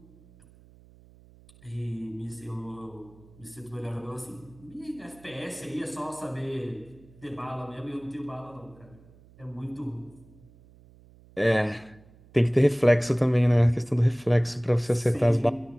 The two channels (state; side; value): noise; right; hum, 25 dB below the sound